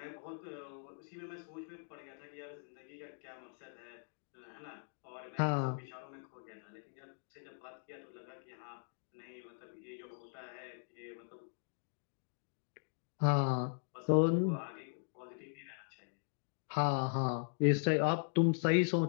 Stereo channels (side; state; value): right; silent; digital silence